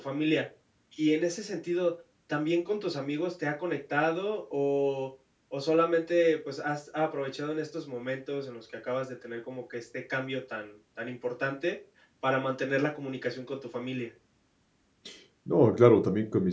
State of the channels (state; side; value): identical; both; correlation 1.00